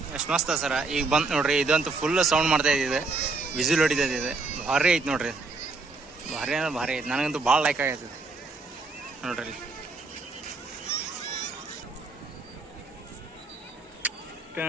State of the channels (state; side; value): quieter; left; 3.9 dB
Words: ಎಷ್ಟು ಮಸ್ತ್ ಸರ. ಈಗ ಬಂತು ನೋಡ್ರಿ, ಇದಂತೂ ಫುಲ್ ಸೌಂಡ್ ಮಾಡ್ತಾ ಇದ್ದಿದೆ, ವಿಸಿಲ್ ಹೊಡಿತೈತಿ. ಇದು ಭಾರಿ ಐತೆ ನೋಡ್ರಿ, ಭಾರಿ ಅಂದ್ರೆ ಭಾರಿ ಐತೆ. ನನಗಂತೂ ಭಾಳ ಲೈಕ್ ಆಗೈತದೆ ನೋಡ್ರಿ.